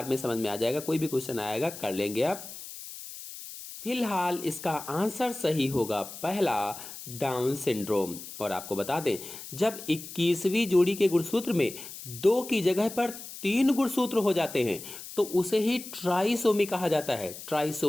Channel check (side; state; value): left; noise; hiss, 12 dB below the sound